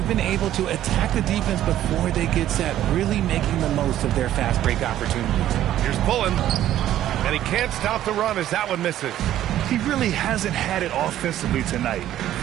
been able to attack the defense before they get set, really making the most of their fast break opportunities. Here's Pullen. And he can't stop the run as that one misses. He really hasn't had it offensively tonight.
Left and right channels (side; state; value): left; quieter; 12.5 dB